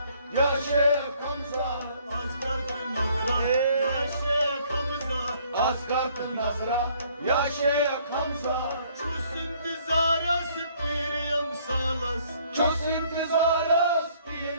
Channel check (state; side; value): inverted; both; correlation -0.62